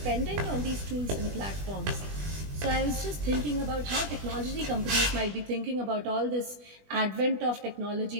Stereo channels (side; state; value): left; late; 20 ms